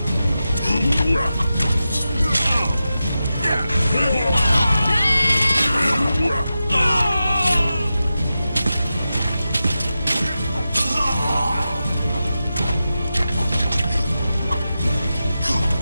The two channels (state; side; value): inverted; both; correlation -0.92